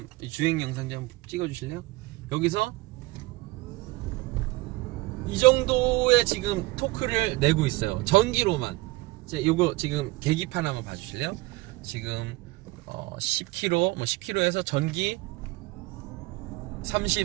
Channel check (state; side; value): quieter; left; 21.1 dB